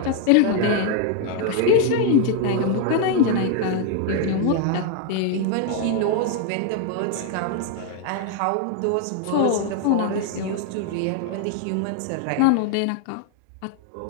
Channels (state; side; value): different; both; correlation 0.01